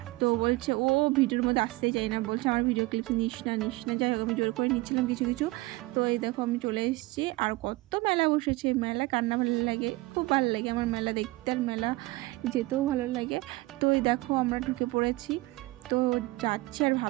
তো বলছে ও ভিডিওর মধ্যে আসতেই চাই না, বলছে আমার ভিডিও ক্লিপস নিস না। যাই হোক, আমি জোর করে নিচ্ছিলাম কিছু কিছু। তো এই দেখো আমি চলে এসেছি। আর কত মেলা বসেছে, মেলা কান্না ভালো লাগে, খুব ভালো লাগে আমার মেলা দেখতে, আর মেলা যেতেও ভালো লাগে। তো এই দেখো আমরা ঢুকে পড়েছি, তো যাচ্ছি আর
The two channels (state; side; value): quieter; left; 20.9 dB